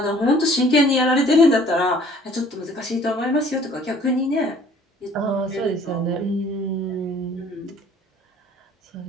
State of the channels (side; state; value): both; normal; correlation 0.54